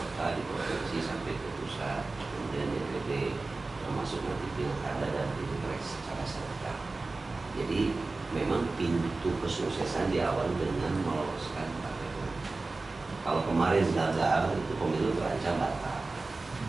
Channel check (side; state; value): left; quieter; 3.5 dB